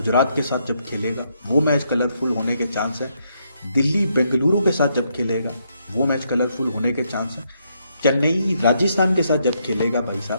के साथ जब खेलेगा वो मैच कलरफुल होने के चांस है। दिल्ली बेंगलुरु के साथ जब खेलेगा वो मैच कलरफुल होने के चांस है। चेन्नई राजस्थान के साथ जब खेलेगा भाई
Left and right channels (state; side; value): inverted; both; correlation -0.76